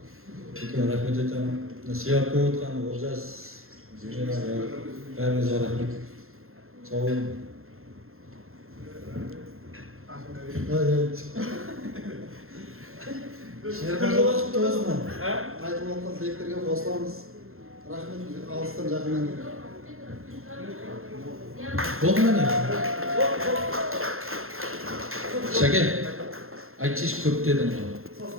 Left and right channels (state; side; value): late; left; 0.62 ms